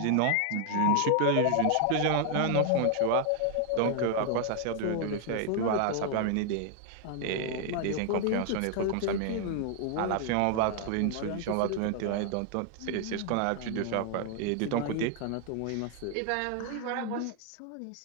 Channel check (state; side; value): different; both; correlation 0.00